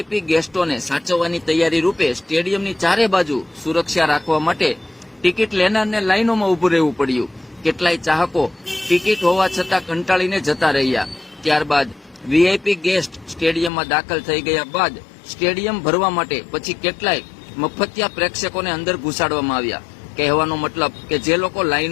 ગેસ્ટોને સાચવવાની તૈયારી રૂપે સ્ટેડિયમની ચારે બાજુ સુરક્ષા રાખવા માટે ટિકિટ લેનારને લાઇનોમાં ઉભું રહેવું પડ્યું। કેટલાય ચાહકો ટિકિટ હોવા છતાં કંટાળીને જતા રહ્યા। ત્યારબાદ વીઆઈપી ગેસ્ટ સ્ટેડિયમમાં દાખલ થઈ ગયા બાદ સ્ટેડિયમ ભરવા માટે પછી કેટલાય મફતિયા પ્રેક્ષકોને અંદર ઘુસાડવામાં આવ્યા। કહેવાનો મતલબ કે જે લોકો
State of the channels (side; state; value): right; drops out; at 13.7 s